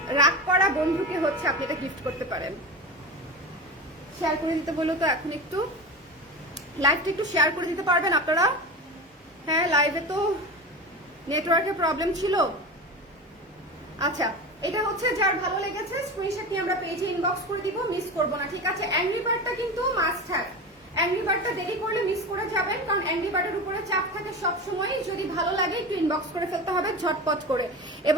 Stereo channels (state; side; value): normal; both; correlation 0.26